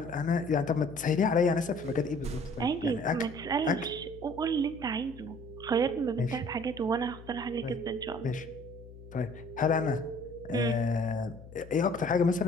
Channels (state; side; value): noise; left; hum, 17 dB below the sound